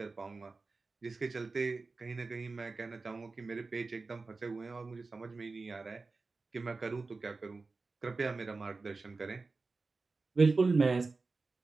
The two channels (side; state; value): left; quieter; 3.9 dB